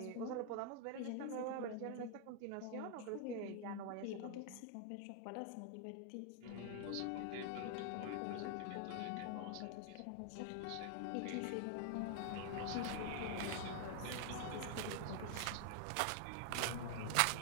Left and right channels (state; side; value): different; both; correlation 0.00